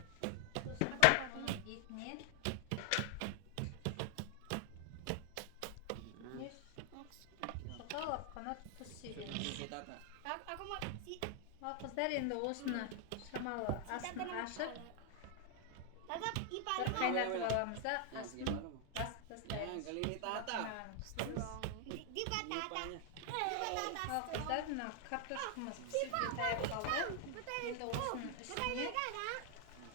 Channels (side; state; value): both; different; correlation 0.00